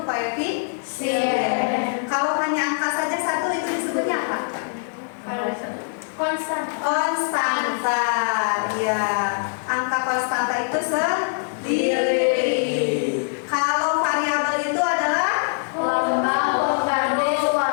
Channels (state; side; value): silent; right; digital silence